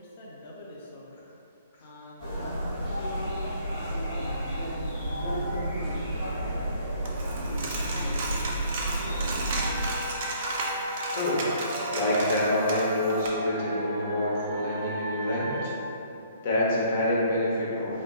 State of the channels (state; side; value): inverted; both; correlation -0.60